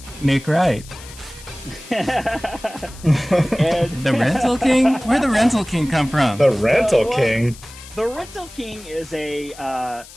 Nick Wright. The Rental King? Where'd the Rental King come from? The Rental King? The Rental King is it's a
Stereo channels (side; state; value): left; noise; hiss, 19 dB below the sound